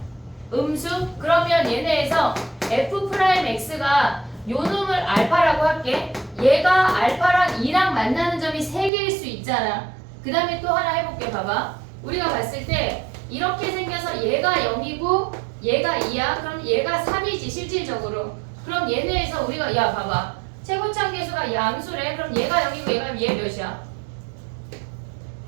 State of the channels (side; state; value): left; drops out; at 8.9 s